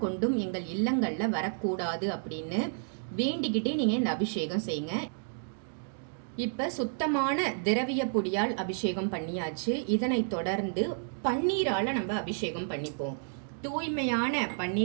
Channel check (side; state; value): left; silent; digital silence